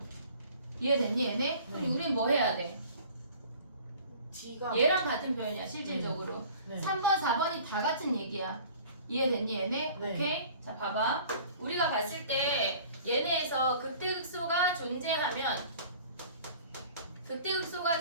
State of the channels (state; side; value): inverted; both; correlation -0.48